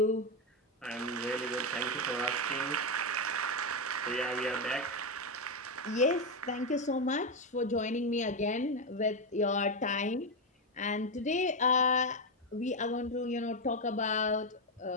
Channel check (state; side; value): normal; both; correlation 0.07